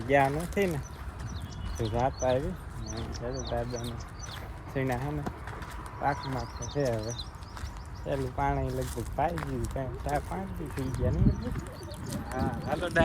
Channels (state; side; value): identical; both; correlation 1.00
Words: ગયા નથી ને, તો રાત આવી દાદાને સીણા હે ને પાકમાં તો છે. હવે પેલું પાણી લગભગ પાઈ ગયું, કાંઈ 4-5 દી થઈ ગયા ને. હા હાલો